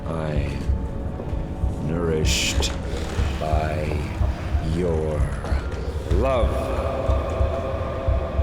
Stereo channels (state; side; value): identical; both; correlation 1.00